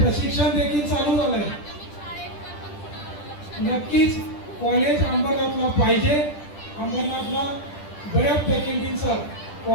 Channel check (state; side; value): late; right; 10 ms